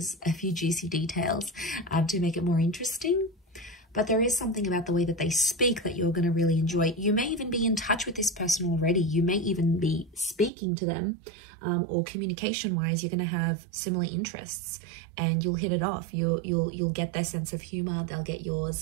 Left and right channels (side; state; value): left; drops out; at 10.5 s